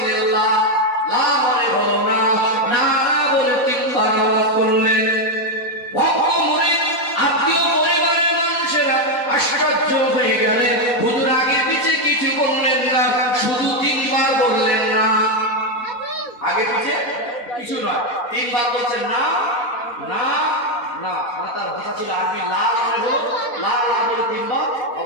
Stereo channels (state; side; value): late; right; 4.1 ms